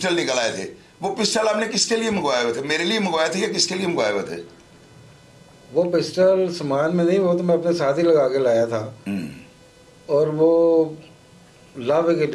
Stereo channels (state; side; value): identical; both; correlation 1.00